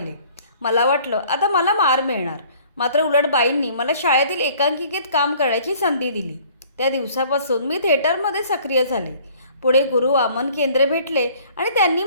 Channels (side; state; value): both; inverted; correlation -0.54